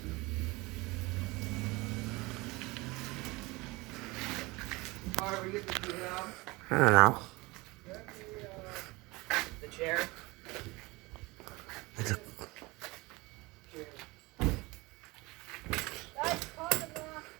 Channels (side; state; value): left; quieter; 23.3 dB